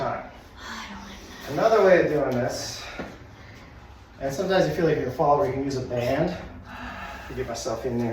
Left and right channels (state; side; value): identical; both; correlation 1.00